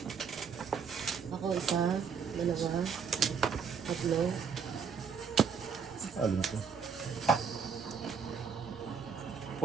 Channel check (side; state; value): left; quieter; 6.2 dB